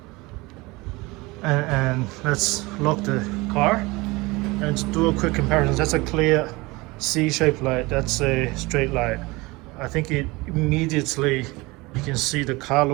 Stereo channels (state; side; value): quieter; left; 23.1 dB